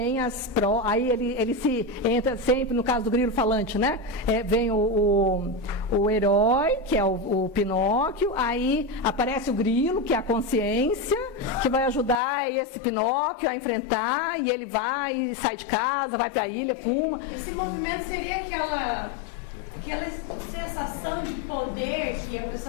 aí ele se entra sempre, no caso do grilo falante, né? Vem o herói, que é o Pinóquio, aí aparece o grilo, que é a consciência, que vai ajudar esse Pinóquio a enfrentar, e ele vai, sai de casa, vai para a ilha, fuma. Esse movimento seria aquela sensação de poder que a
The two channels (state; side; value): drops out; right; at 12.2 s